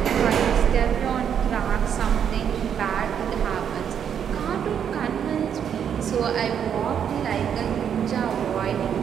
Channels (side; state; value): left; quieter; 8.4 dB